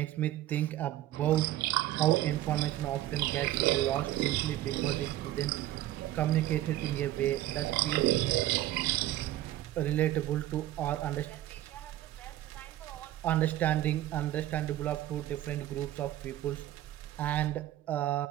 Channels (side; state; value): left; quieter; 14.1 dB